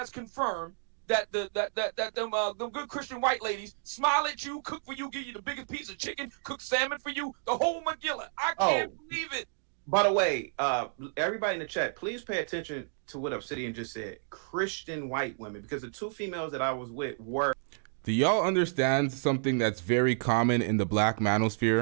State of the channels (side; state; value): left; silent; digital silence